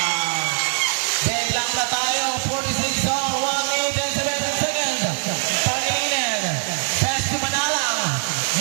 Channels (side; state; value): left; silent; digital silence